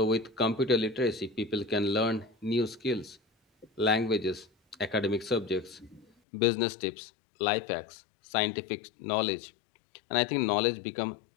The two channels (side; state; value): right; drops out; at 6.1 s